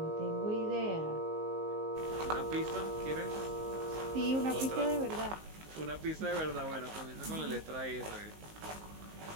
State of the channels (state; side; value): late; left; 19 ms